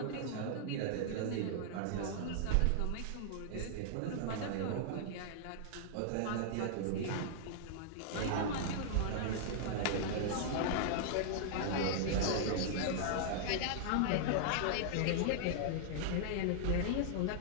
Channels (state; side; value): different; both; correlation -0.01